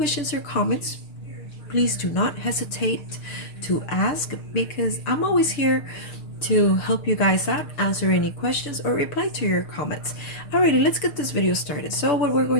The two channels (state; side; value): late; right; 6.6 ms